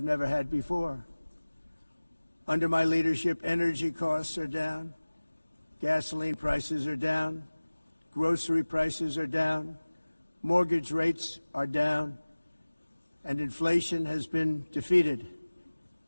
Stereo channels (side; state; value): both; inverted; correlation -1.00